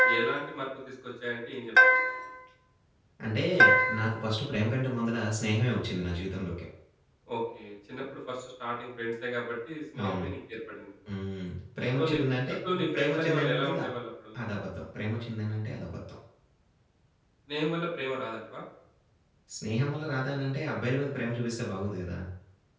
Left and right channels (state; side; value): identical; both; correlation 1.00